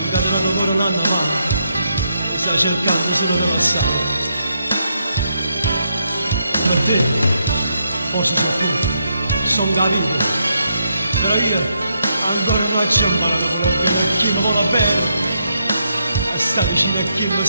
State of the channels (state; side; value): inverted; both; correlation -0.79